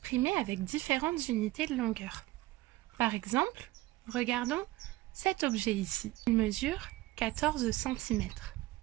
avec différentes unités de longueur. Par exemple, regardons cet objet ici. Il mesure 14 cm.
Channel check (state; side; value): quieter; left; 18.2 dB